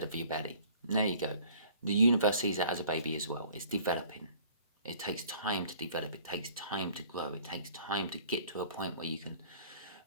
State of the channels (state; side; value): inverted; both; correlation -0.52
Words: of your belly. There you go. The universe sees it as a baby as well. It's developing. It takes time to develop. It takes time to grow. It takes time to get to a point where you can